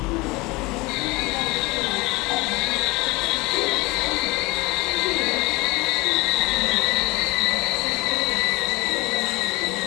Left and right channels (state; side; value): quieter; right; 23.6 dB